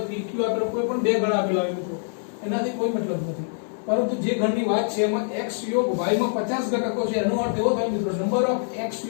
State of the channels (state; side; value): silent; right; digital silence